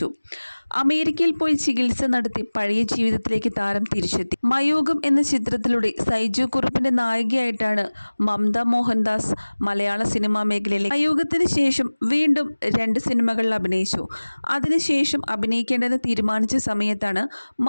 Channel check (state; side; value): inverted; both; correlation -1.00